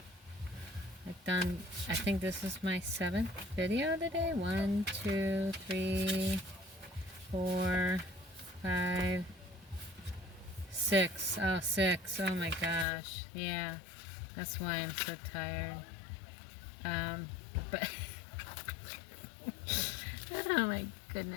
I've done, I think this is my 7th video today. 1, 2, 3, 4, 5, 6. Oh, 6. Oh my gosh. Yeah. That's why I'm so tired. But oh my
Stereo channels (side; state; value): right; drops out; at 12.9 s